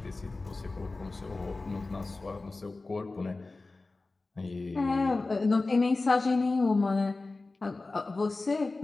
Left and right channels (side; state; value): right; quieter; 3.4 dB